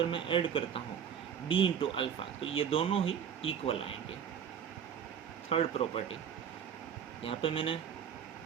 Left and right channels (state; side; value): quieter; left; 8.2 dB